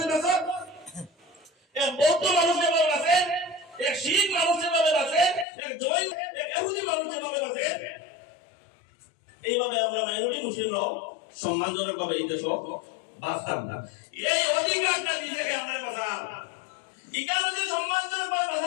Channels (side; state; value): right; drops out; at 5.5 s